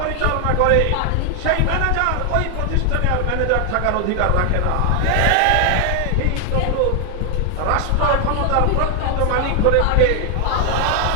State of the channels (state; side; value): different; both; correlation 0.00